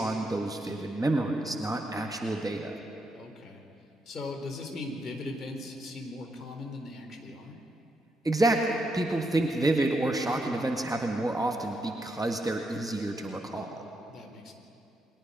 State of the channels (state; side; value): normal; both; correlation 0.80